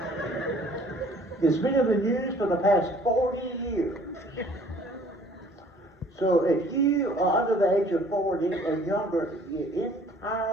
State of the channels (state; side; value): normal; both; correlation 0.55